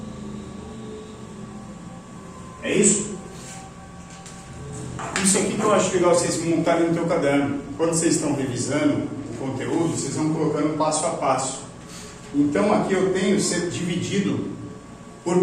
É isso? Isso aqui que eu acho legal vocês montarem no teu caderno. Quando vocês estão revisando o conteúdo, vocês vão colocando passo a passo. Então aqui eu tenho ser dividido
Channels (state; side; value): identical; both; correlation 1.00